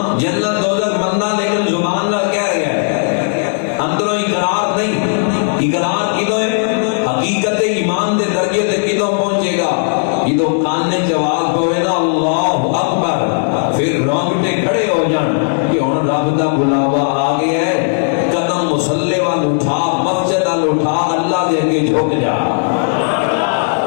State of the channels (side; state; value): right; silent; digital silence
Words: جنت دوزخ مندا لیکن زبان نال کہہ رہا ہے اندروں اقرار نہیں اقرار کدوں ہے حقیقت ایمان دے درجے تے کدوں پہنچے گا جدوں کان نے جواب پوے نا اللہ اکبر پھر رونگٹے کھڑے ہو جان کہ ہن رب دا بلاوا آ گیا ہے قدم مصلی وال اٹھا مسجد وال اٹھا اللہ دے اگے جھک جا